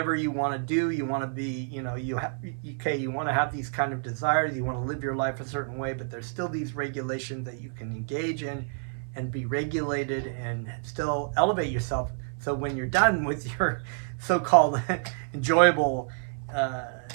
you want to do, you want to be, you want to have these kind of desires, you want to live your life a certain way, but there's still these regulations that you can engage in and be regulated and still elevate yourself. So when you're done with your so-called enjoyable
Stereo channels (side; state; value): left; silent; 55 dB below the other